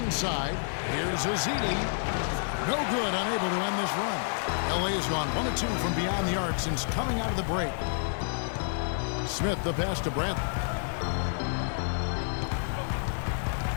here's Ezeli. No good, unable to end this run. LA has gone 1 of 2 from beyond the arc since coming out of the break. Smith the pass to Bradley.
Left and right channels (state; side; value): silent; right; 58 dB below the other